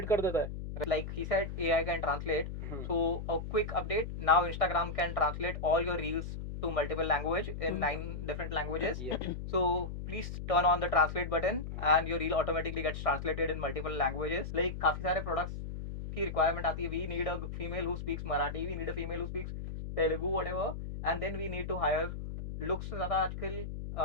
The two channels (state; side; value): noise; left; hum, 7 dB below the sound